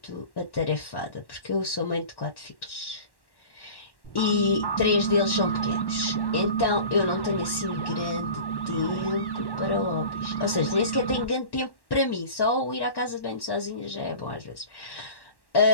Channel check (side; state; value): right; late; 1.1 ms